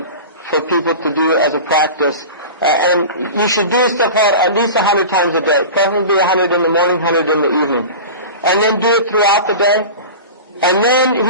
for people to do as a practice. And you should do istighfar at least 100 times a day, preferably 100 in the morning, 100 in the evening. And then do it throughout the day. And then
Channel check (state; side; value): inverted; both; correlation -0.32